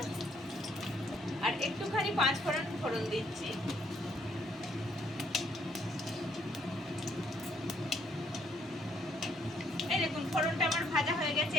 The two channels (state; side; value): normal; both; correlation 0.68